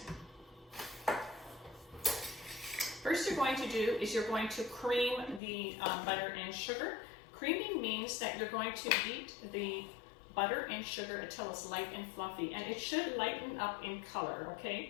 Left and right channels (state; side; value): drops out; right; at 5.4 s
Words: First you're going to do is you're going to cream the butter and sugar. Creaming means that you're going to beat the butter and sugar until it's light and fluffy, and it should lighten up in color,